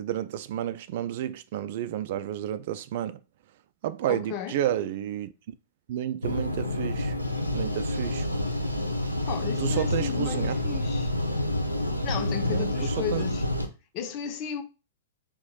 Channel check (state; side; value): inverted; both; correlation -0.56